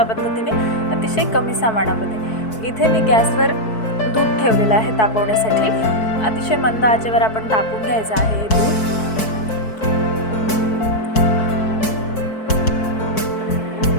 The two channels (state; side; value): late; right; 4.6 ms